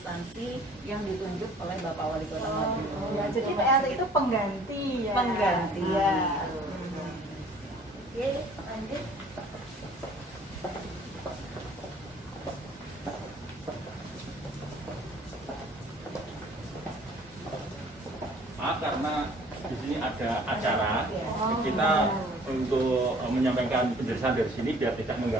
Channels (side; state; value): both; normal; correlation 0.53